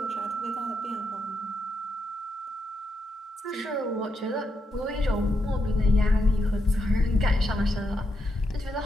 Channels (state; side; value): normal; both; correlation 0.82